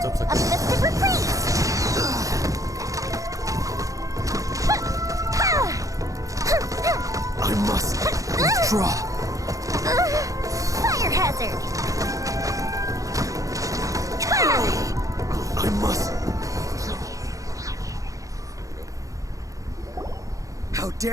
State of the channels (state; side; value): late; left; 0.16 ms